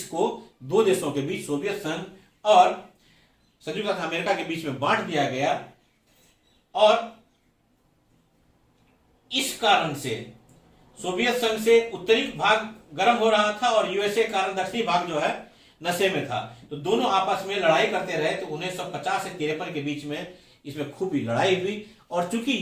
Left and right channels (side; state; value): both; identical; correlation 1.00